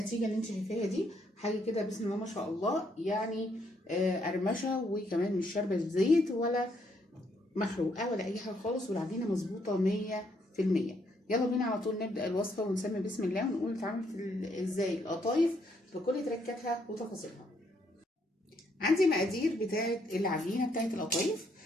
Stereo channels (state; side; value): normal; both; correlation 0.72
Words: اللي انت شايفاها دي. حاجة كده بسم الله ما شاء الله، يعني قرمشة، وكمان مش شاربة زيت ولا محروقة ولا أي حاجة خالص، والعجينة مظبوطة 100%. يلا بينا على طول نبدأ الوصفة ونسمي بسم الله ونقول اتعملت ازاي القطايف بكل تركاتها وتفاصيلها. عندي مقادير بتاعة العجينة بتاعة القطايف.